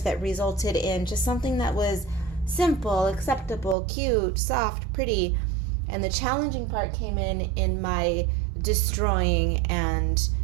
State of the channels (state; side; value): drops out; left; at 3.8 s